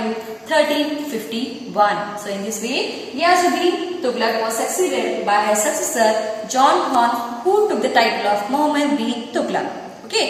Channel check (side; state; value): both; identical; correlation 1.00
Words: 1351. So in this way, Ghiyazuddin Tughlaq was succeeded by his successor John Khan, who took the title of Muhammad bin Tughlaq.